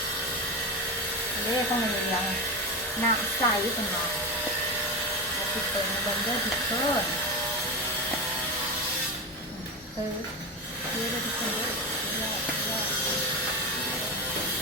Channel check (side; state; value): both; normal; correlation 0.18